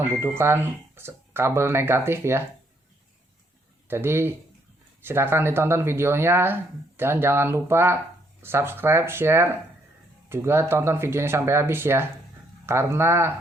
kabel negatif ya. Jadi silakan ditonton videonya dan jangan lupa subscribe, share, juga tonton videonya sampai habis ya,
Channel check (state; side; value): normal; both; correlation 0.71